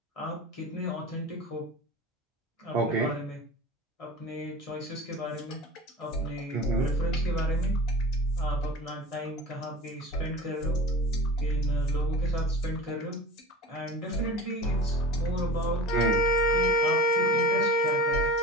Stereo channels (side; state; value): both; normal; correlation 0.36